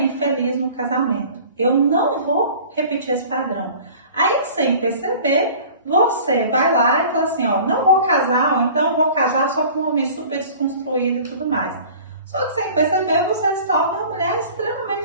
infeliz no casamento. Eu não vou repetir esse padrão. Aí, sem perceber, você vai lá e fala assim, não vou casar, ou então vou casar só com um homem super desconstruído e tudo mais. Só que sem perceber, você se torna uma mulher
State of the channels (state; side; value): inverted; both; correlation -0.44